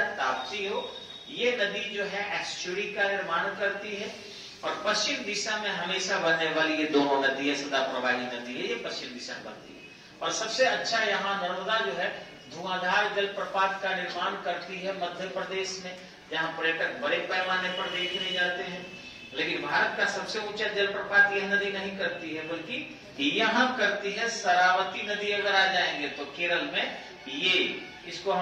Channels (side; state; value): both; identical; correlation 1.00